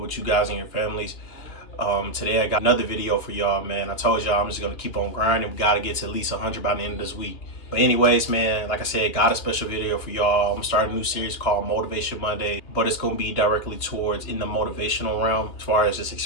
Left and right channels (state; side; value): late; right; 2.8 ms